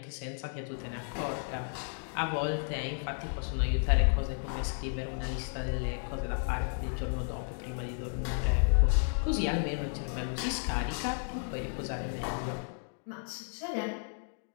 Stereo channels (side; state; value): right; silent; 56 dB below the other